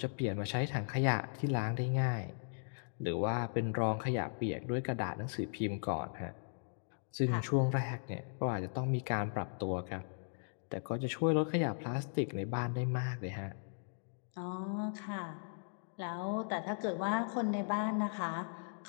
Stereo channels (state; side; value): silent; right; digital silence